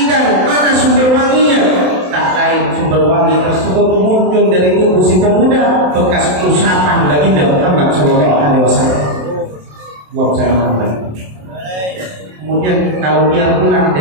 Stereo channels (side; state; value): left; late; 27 ms